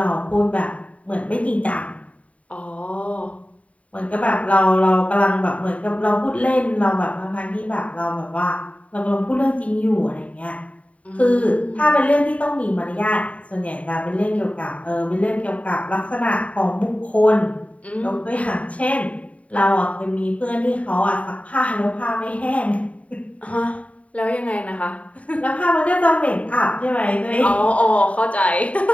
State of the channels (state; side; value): late; right; 0.067 ms